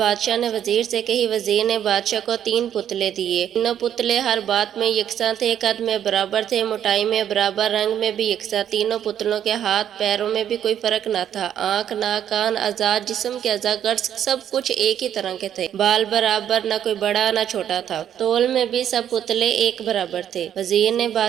نے وزیر سے کہی۔ وزیر نے بادشاہ کو 3 پتلے دیے۔ تینوں پتلے ہر بات میں یکساں تھے، قد میں برابر تھے، موٹائی میں برابر، رنگ میں بھی یکساں۔ تینوں پتلوں کے ہاتھ پیروں میں بھی کوئی فرق نہ تھا۔ آنکھ، ناک، کان، اعضاء جسم کے اعضاء گرز سب کچھ ایک ہی طرح کے تھے۔ بال برابر، نہ کوئی بڑا نہ چھوٹا تھا۔ تول میں بھی سب پتلے ایک برابر تھے۔ وزیر نے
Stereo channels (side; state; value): left; quieter; 9.9 dB